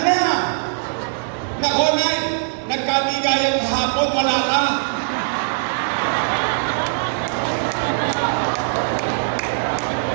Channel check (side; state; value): left; silent; digital silence